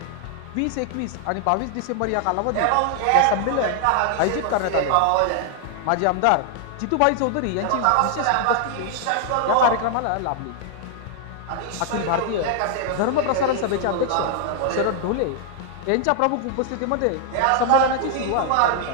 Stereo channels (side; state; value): both; different; correlation 0.00